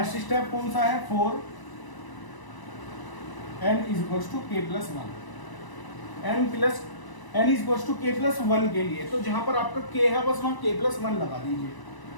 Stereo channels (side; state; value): right; late; 1.0 ms